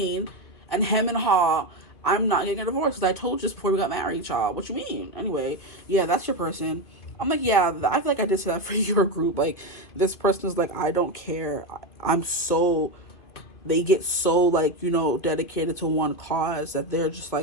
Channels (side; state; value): right; late; 2.4 ms